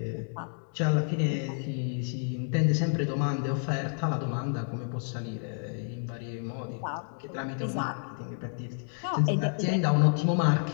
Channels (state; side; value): silent; right; 58 dB below the other